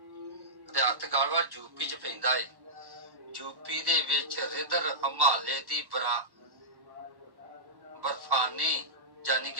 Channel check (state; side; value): late; left; 1.1 ms